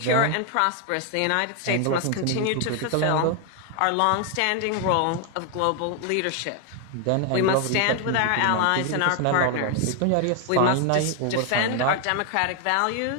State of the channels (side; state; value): both; different; correlation 0.00